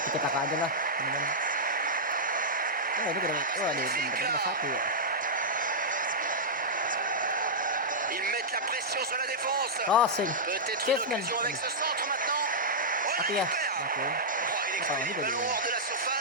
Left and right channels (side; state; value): both; normal; correlation -0.10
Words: Kita tak aja lah. Ini keren. Magnifique là. Satu. Ils mettent la pression sur la défense. Crossing. Peut-être une occasion avec ce centre maintenant. Oh, il ya. récupère. Oke. Oh, il expédie le ballon hors de la